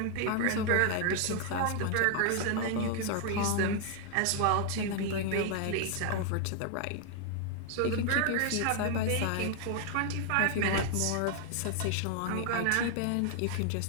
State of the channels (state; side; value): different; both; correlation 0.00